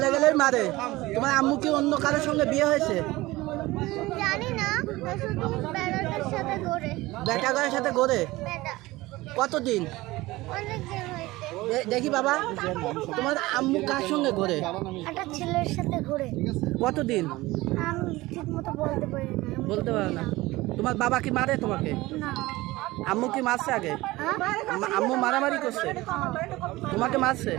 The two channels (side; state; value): left; quieter; 19.4 dB